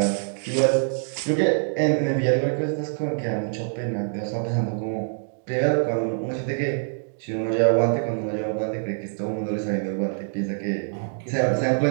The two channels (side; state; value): left; silent; digital silence